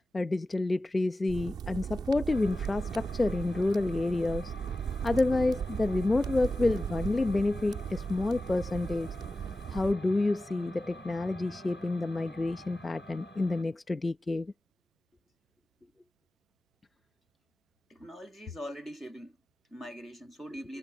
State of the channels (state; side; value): normal; both; correlation 0.94